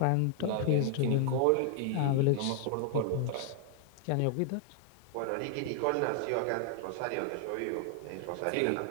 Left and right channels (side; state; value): both; different; correlation 0.00